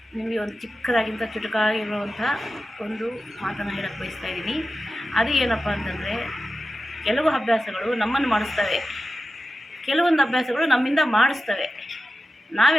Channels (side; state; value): both; normal; correlation 0.92